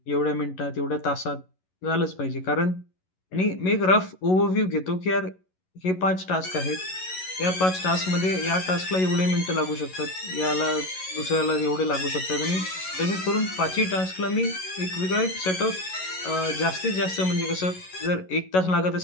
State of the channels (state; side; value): late; right; 11 ms